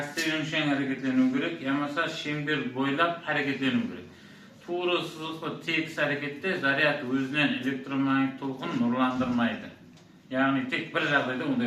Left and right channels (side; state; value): both; identical; correlation 1.00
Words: yönüşen hareketleniyor gerek. Yamasa şember boylap hareketleniyor gerek. Tuğru sızılıklı tek harekette zaryat özünden elektromanyetik tolkun nurlandırmaydı. Yani tek bir жағдайда